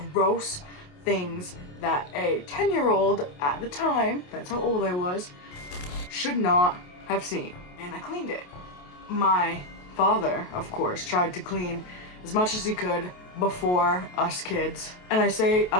gross things that a 10-year-old at the time, that's how old I was, should not have seen. And I cleaned it. My father, of course, tried to clean as much as he could before us kids. And I say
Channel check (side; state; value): right; late; 28 ms